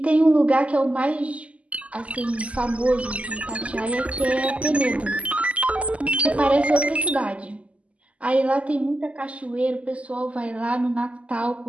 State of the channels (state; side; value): late; left; 0.065 ms